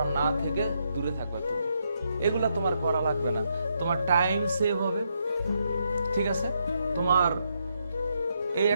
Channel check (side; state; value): both; inverted; correlation -0.78